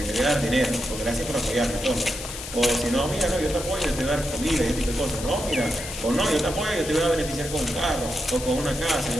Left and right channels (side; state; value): left; noise; hiss, 10 dB below the sound